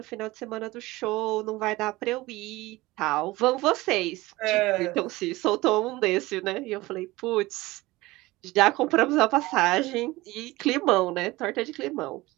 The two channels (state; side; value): quieter; left; 19.9 dB